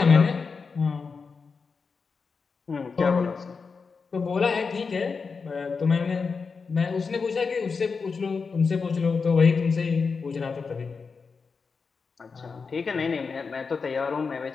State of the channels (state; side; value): quieter; right; 5.0 dB